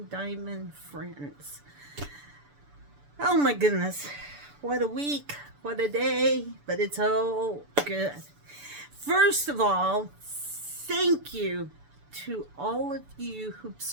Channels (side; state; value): left; late; 6.9 ms